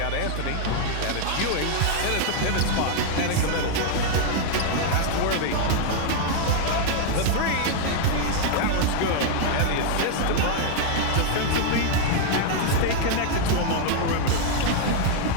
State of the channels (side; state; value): both; different; correlation 0.00